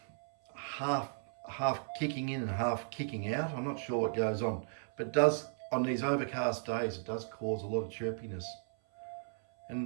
half kicking in and half kicking out. I'm not sure what goes on, but it does, on these overcast days, it does cause a lot of chirpiness.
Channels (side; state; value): left; silent; 54 dB below the other